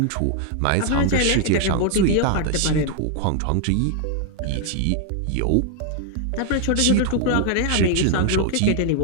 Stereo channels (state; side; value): different; both; correlation 0.00